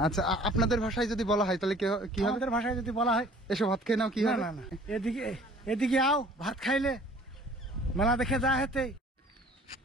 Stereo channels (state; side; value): normal; both; correlation 0.51